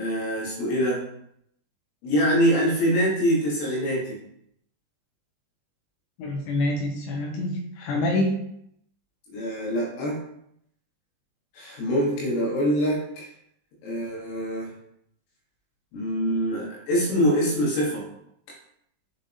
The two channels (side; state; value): right; late; 21 ms